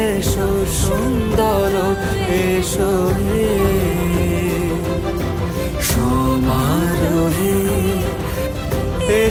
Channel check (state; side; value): identical; both; correlation 1.00